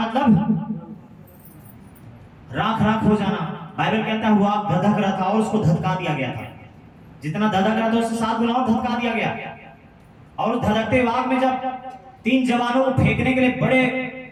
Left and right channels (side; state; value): both; identical; correlation 1.00